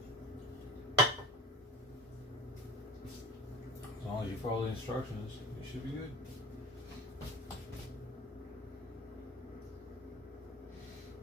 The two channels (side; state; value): both; normal; correlation 0.36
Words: As long as you follow the instructions, you should be good.